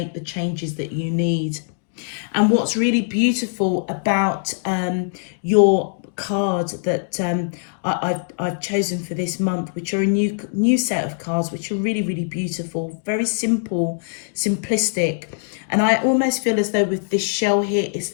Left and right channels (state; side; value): silent; right; digital silence